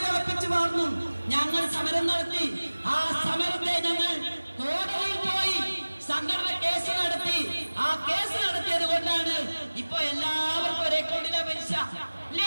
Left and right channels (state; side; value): inverted; both; correlation -1.00